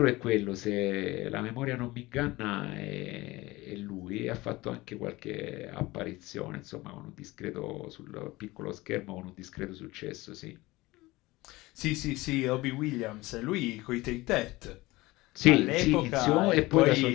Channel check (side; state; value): right; quieter; 20.3 dB